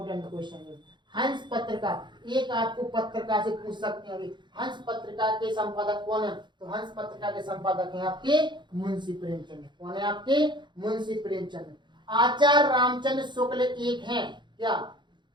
क्वेश्चन है, हंस पत्रिका, एक आपको पत्रिका से पूछ सकते हैं, हंस पत्रिका के संपादक कौन है? तो हंस पत्रिका के संपादक हैं आपके मुंशी प्रेमचंद। कौन है आपके? मुंशी प्रेमचंद। आचार्य रामचंद्र शुक्ल एक हैं क्या?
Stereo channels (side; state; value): left; late; 0.22 ms